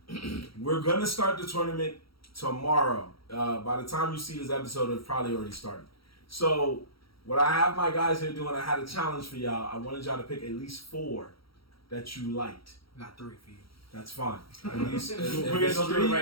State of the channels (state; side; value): late; right; 0.75 ms